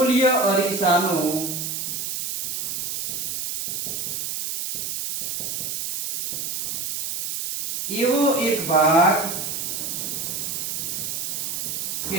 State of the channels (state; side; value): noise; right; hiss, 3 dB below the sound